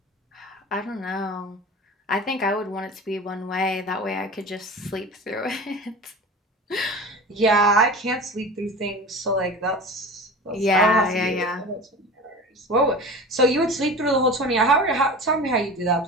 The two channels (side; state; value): both; normal; correlation 0.35